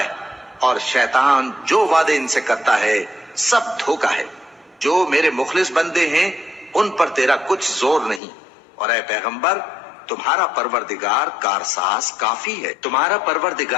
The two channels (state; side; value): drops out; right; at 8.2 s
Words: اور شیطان جو وعدے ان سے کرتا ہے سب دھوکا ہے۔ جو میرے مخلص بندے ہیں ان پر تیرا کچھ زور نہیں، اور اے پیغمبر تمہارا پروردگار کارساز کافی ہے۔ تمہارا